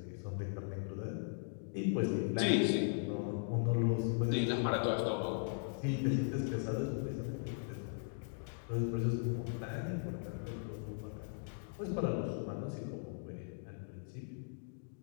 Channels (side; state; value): right; silent; digital silence